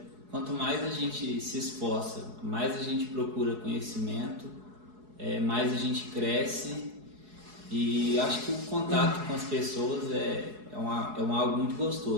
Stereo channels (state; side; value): late; left; 4.7 ms